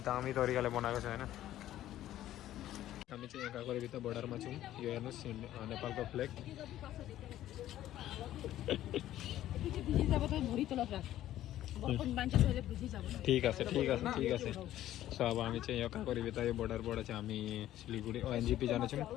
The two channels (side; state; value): right; quieter; 13.2 dB